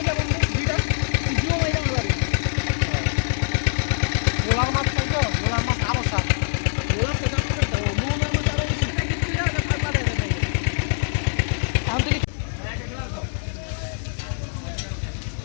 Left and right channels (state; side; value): silent; right; 58 dB below the other